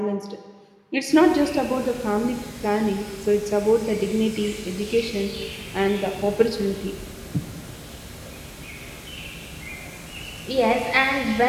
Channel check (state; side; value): identical; both; correlation 1.00